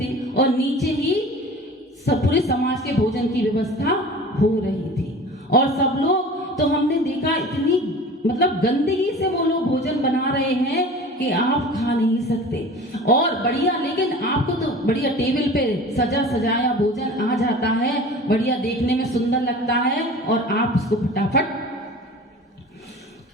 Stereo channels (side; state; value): both; normal; correlation 0.40